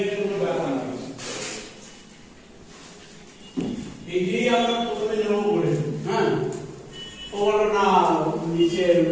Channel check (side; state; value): both; identical; correlation 1.00